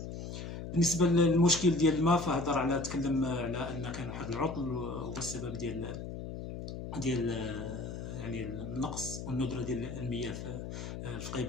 بالنسبه للمشكل ديال الماء، فهضر تكلم على ان كان واحد العطل هو السبب ديال يعني النقص والندره ديال المياه في فقيه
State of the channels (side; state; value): left; noise; hum, 7 dB below the sound